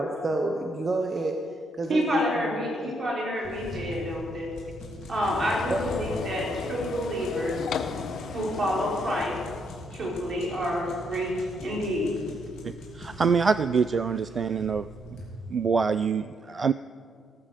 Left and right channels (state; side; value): normal; both; correlation 0.75